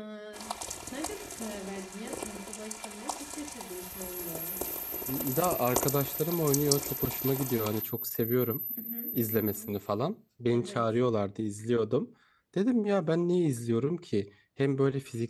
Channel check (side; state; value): both; identical; correlation 1.00